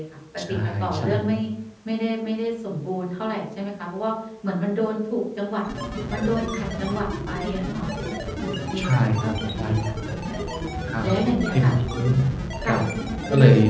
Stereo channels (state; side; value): identical; both; correlation 1.00